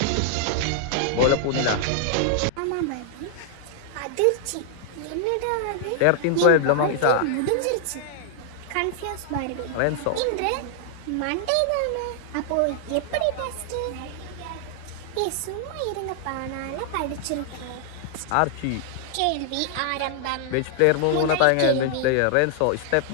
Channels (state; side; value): different; both; correlation -0.01